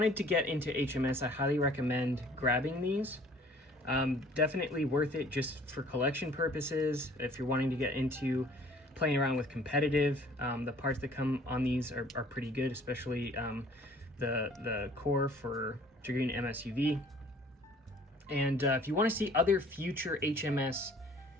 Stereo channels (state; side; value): normal; both; correlation 0.54